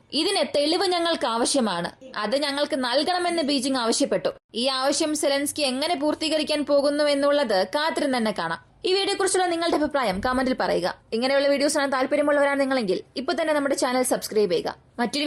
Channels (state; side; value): identical; both; correlation 1.00